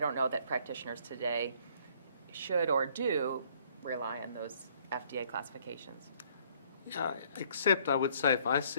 know that practitioners today should or do rely on those FDA classifications. Yeah, except I would say if I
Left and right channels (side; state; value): both; inverted; correlation -0.62